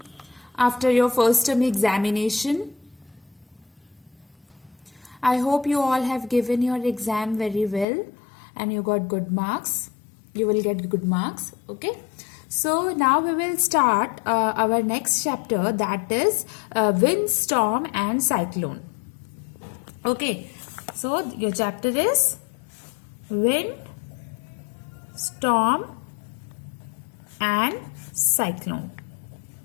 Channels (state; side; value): drops out; right; at 7.9 s